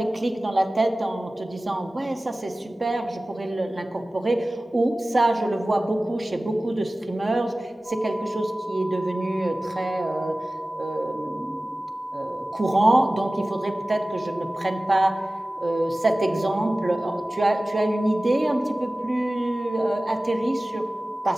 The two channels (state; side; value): normal; both; correlation 0.97